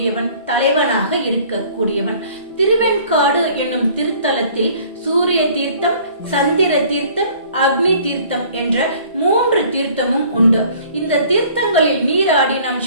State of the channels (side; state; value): both; inverted; correlation -0.53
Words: தலைவனாக இருக்கக்கூடியவன். திருவெண்காடு என்னும் திருத்தலத்தில் சூரிய தீர்த்தம், சந்திர தீர்த்தம், அக்னி தீர்த்தம் என்ற 3 தீர்த்தமும் உண்டு. இந்த தீர்த்தங்களில் நீராடி நாம்